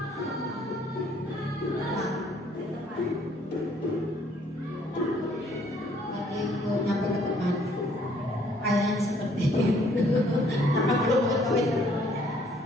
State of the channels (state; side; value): normal; both; correlation 0.62